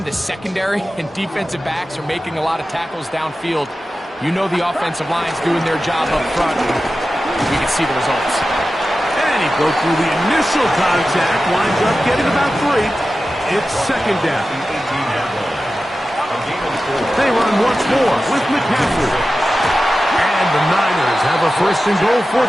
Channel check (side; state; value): both; normal; correlation 0.94